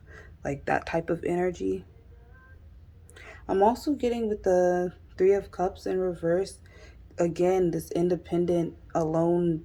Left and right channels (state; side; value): identical; both; correlation 1.00